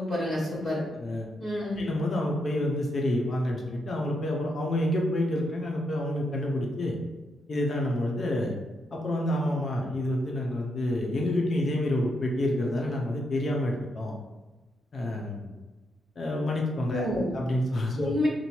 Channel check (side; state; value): both; normal; correlation 0.80